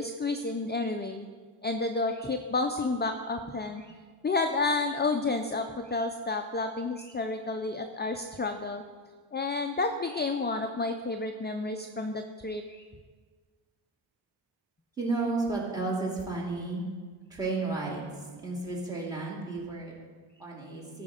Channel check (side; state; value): both; normal; correlation 0.16